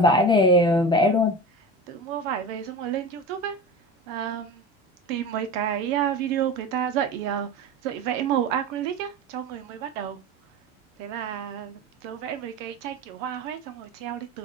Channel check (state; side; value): normal; both; correlation 0.29